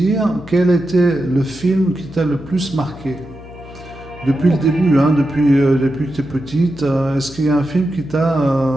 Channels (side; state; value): left; noise; hum, 17 dB below the sound